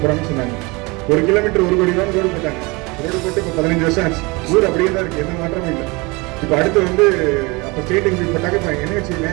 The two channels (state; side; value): quieter; left; 25.8 dB